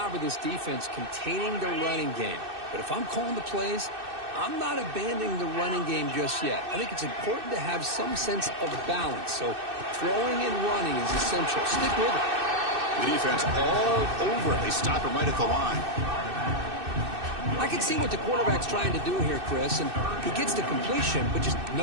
of this defense containing the running game. But if I'm calling the plays, I'm not abandoning the running game just yet. I think it's important to have some sense of balance. So throwing and running is essential. Stick with it. The defense all over it. They stop him right at the line. I can see what the quarterback's trying to do here, Chris, and he gets the completion, but just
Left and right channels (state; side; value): late; left; 2.6 ms